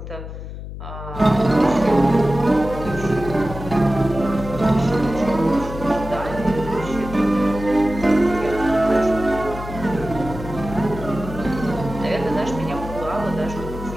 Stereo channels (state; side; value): noise; left; hum, 10 dB below the sound